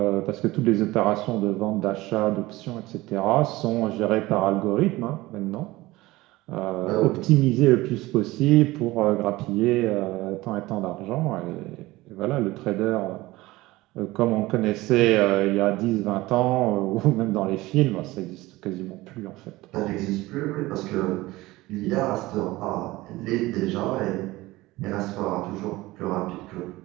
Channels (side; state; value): left; quieter; 19.2 dB